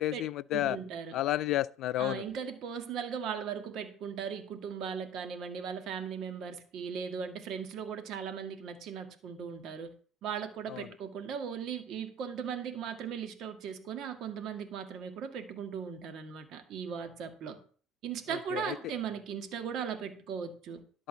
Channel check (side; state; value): both; normal; correlation 0.38